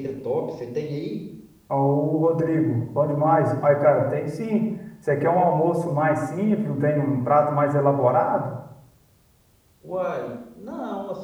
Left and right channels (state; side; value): identical; both; correlation 1.00